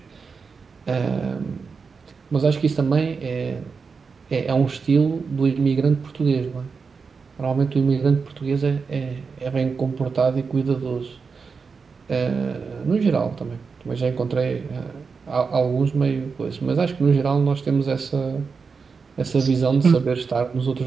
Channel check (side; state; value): left; quieter; 5.1 dB